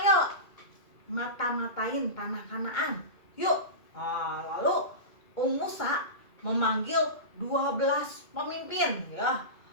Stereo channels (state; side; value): late; right; 2.2 ms